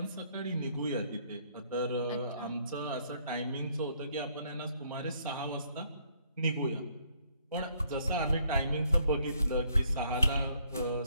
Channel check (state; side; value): inverted; both; correlation -0.67